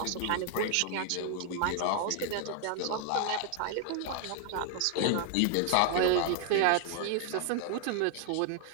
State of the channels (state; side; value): different; both; correlation 0.00